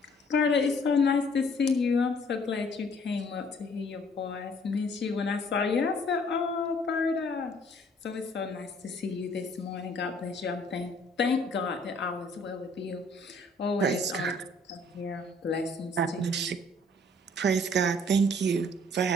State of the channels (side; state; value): both; normal; correlation 0.59